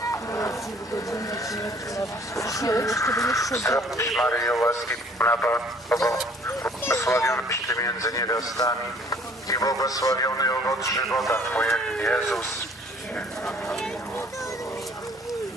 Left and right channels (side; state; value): both; normal; correlation 0.56